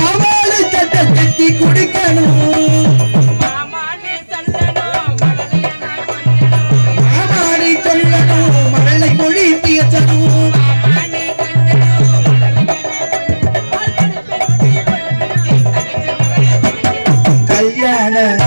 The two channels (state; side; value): inverted; both; correlation -1.00